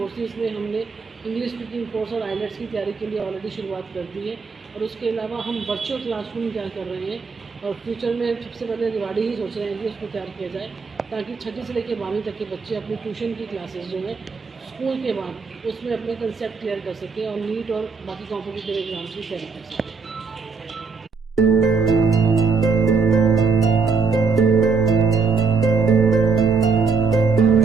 में हमने इंग्लिश स्पीकिंग कोर्स और आइलेट्स की तैयारी के लिए ऑलरेडी शुरुआत कर दी है। और उसके अलावा हम वर्चुअल क्लासरूम तैयार कर रहे हैं और फ्यूचर में सबसे पहले रिवाड़ी ही सोच रहे हैं कि उसको तैयार किया जाए, ताकि 6ठी से लेकर 12वीं तक के बच्चे अपनी ट्यूशन की क्लासेस जो है स्कूल के बाद उसमें अपने कंसेप्ट क्लियर कर सकें और नीट और बाकी कॉम्पिटिटिव एग्जाम्स की तैयारी कर सकें।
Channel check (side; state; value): left; quieter; 4.9 dB